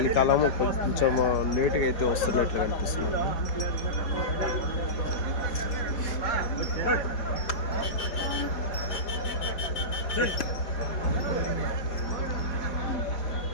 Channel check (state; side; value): late; right; 4.7 ms